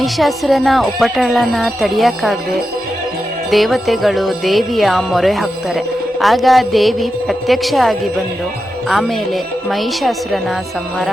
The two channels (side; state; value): both; normal; correlation 0.89